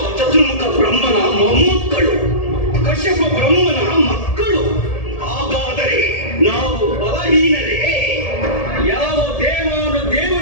ಚತುರ್ಮುಖ ಬ್ರಹ್ಮನ ಮೊಮ್ಮಕ್ಕಳು, ಕಶ್ಯಪ ಬ್ರಹ್ಮನ ಮಕ್ಕಳು. ಹಾಗಾದರೆ ನಾವು ಬಲಹೀನರೇ? ಯಾವ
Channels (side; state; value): right; late; 1.8 ms